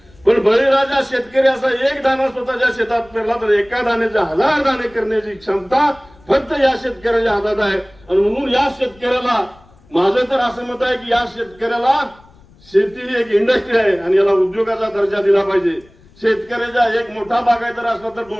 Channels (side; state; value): left; noise; rumble, 28 dB below the sound